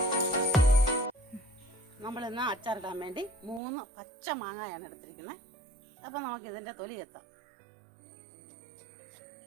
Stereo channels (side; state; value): left; drops out; at 3.6 s